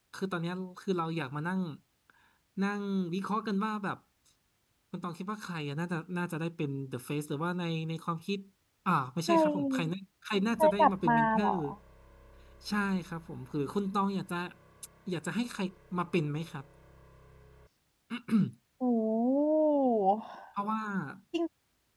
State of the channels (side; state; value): both; identical; correlation 1.00